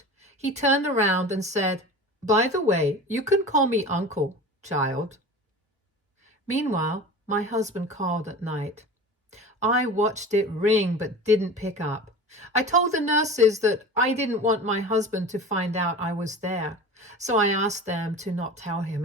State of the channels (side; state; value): both; normal; correlation 0.35